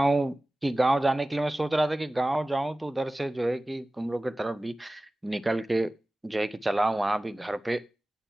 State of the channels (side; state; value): both; normal; correlation 0.97